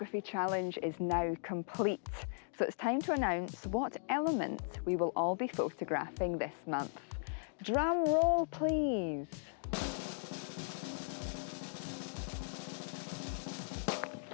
challenge is now complete, so it's time to announce what element we will all be photographing this month. Drum roll, please.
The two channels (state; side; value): silent; right; digital silence